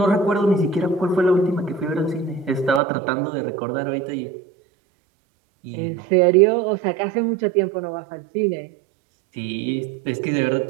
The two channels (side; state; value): left; drops out; at 2.8 s